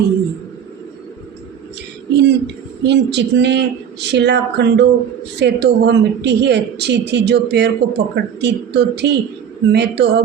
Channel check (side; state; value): left; quieter; 8.3 dB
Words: है। इन चिकने शिलाखंडों से तो वह मिट्टी ही अच्छी थी जो पैर को पकड़ती तो थी। मैं तो